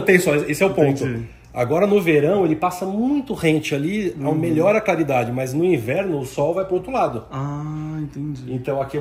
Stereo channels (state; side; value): identical; both; correlation 1.00